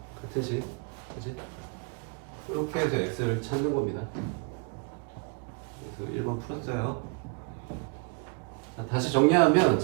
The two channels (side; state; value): left; quieter; 38.1 dB